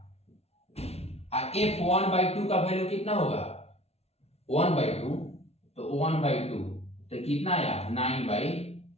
और f1/2 का वैल्यू कितना होगा? 1/2, तो 1/2 तो कितना आया?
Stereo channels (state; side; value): late; right; 0.30 ms